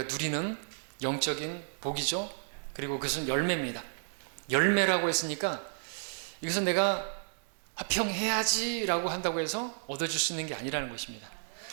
누리는 영적인 복이죠. 그리고 그것은 열매입니다. 열매라고 했으니까 이것은 내가 화평해야지 라고 한다고 해서 얻어줄 수 있는 게 아니라는 것입니다.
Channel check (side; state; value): left; silent; digital silence